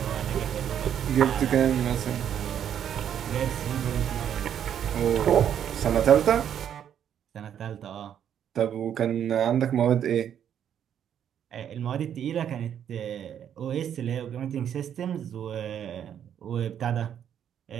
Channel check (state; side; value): quieter; left; 9.3 dB